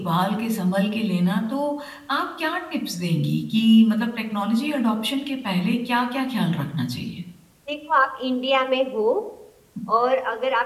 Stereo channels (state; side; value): identical; both; correlation 1.00